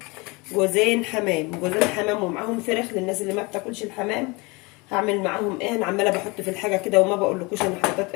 جوزين حمام، جوزين حمام ومعاهم فراخ للناس اللي ما بتاكلش الحمام. هعمل معاهم ايه؟ انا عماله بحط في الحاجه كده وما بقولكوش انا حطيت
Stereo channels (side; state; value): right; quieter; 26.4 dB